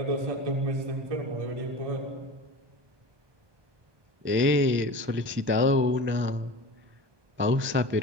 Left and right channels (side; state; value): left; late; 1.2 ms